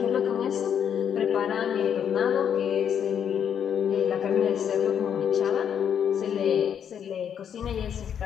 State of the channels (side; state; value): right; quieter; 8.4 dB